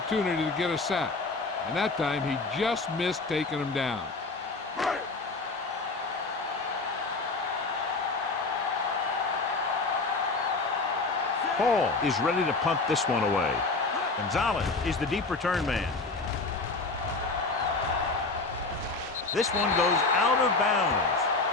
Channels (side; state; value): right; quieter; 3.7 dB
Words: to get a sack, and that time he just missed taking him down. Hall is ready to punt this one away. Gonzalez is the deep return man. This one goes out of bounds.